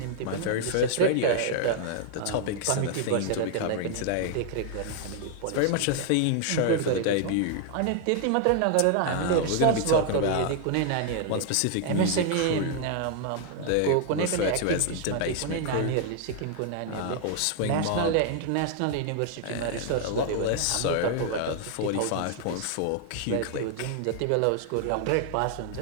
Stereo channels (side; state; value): both; different; correlation 0.00